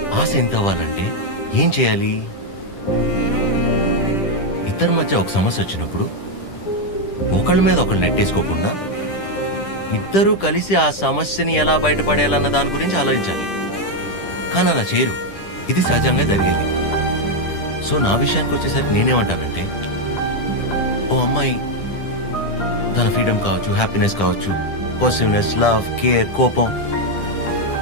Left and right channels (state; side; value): late; right; 10 ms